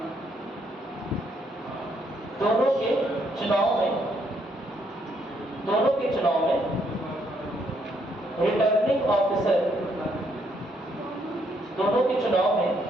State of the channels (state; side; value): normal; both; correlation 0.72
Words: दोनों के चुनाव में रिटर्निंग ऑफिसर, दोनों के चुनाव में